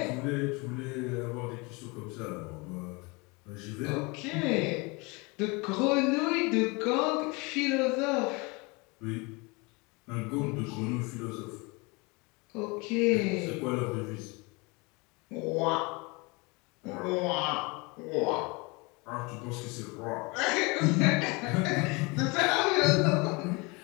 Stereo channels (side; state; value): right; quieter; 27.4 dB